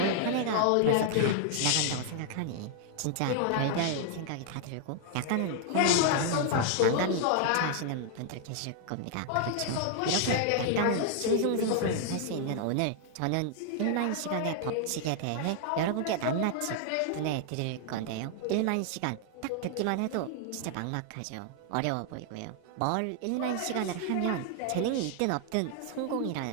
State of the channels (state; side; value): different; both; correlation 0.00